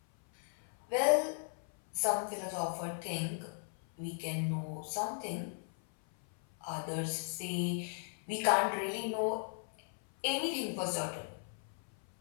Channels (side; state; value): right; silent; 53 dB below the other